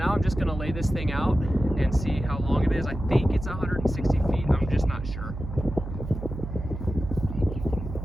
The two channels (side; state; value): right; noise; hum, 8 dB below the sound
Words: I'm just going to lay this thing out and see how long it is. I think it's 160 feet, I'm just not sure.